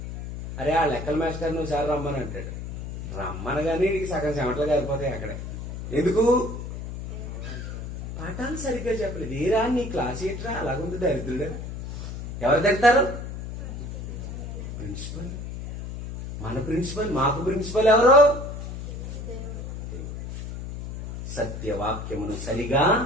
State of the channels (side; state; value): left; noise; hum, 8 dB below the sound